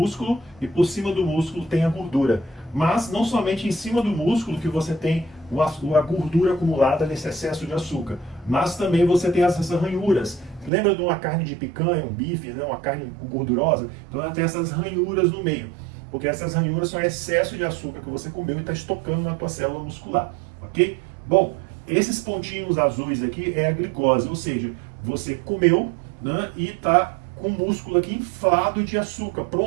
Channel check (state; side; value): drops out; left; at 10.7 s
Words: e por cima do músculo tem a gordura. Mas não somente em cima do músculo que você tem a gordura acumulada nesse excesso de açúcar, mas também você tem essas ranhuras. Lembra de uma carne de picanha, um bife, né, uma carne gordurosa? Então ela tem essas ranhuras no meio, porque essas ranhuras são excesso de açúcar que você comeu e está estocando na tua célula muscular, ok? Bom, esses pontinhos azuis aqui é a glicose, ou seja, você comeu, né, e está com o músculo aqui inflado de açúcar,